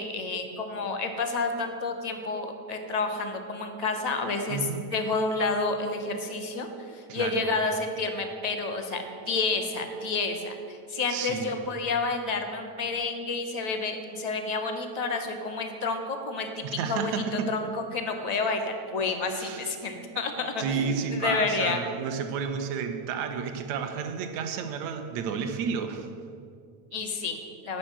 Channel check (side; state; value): left; late; 9.0 ms